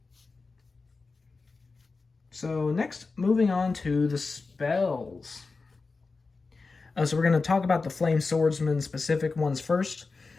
So next, moving on to the spells. So we're going to talk about the Flame Swordsman specific ones first.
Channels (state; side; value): quieter; right; 4.1 dB